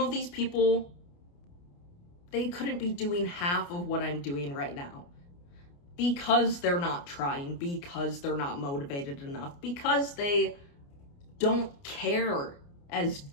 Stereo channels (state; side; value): late; right; 29 ms